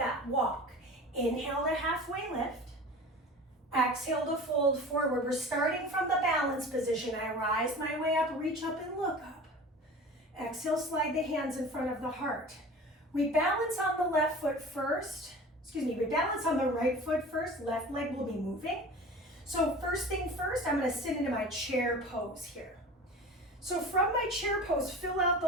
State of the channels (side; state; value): both; normal; correlation 0.38